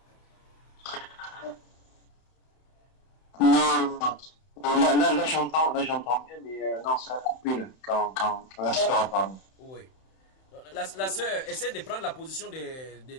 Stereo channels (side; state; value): right; late; 31 ms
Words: Non. Là j'entends bien, mais non, ça a coupé là, quand la sœur a parlé. Oui. La sœur essaie de prendre la position